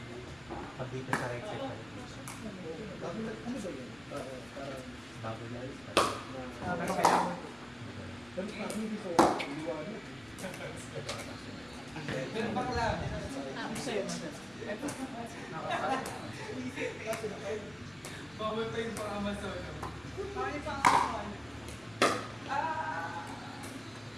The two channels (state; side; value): noise; left; rumble, 24 dB below the sound